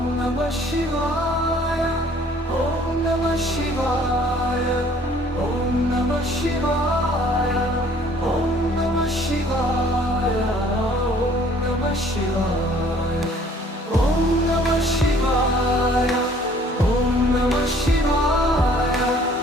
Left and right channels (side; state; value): both; normal; correlation 0.57